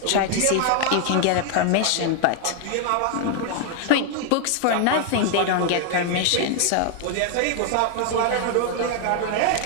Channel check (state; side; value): different; both; correlation 0.00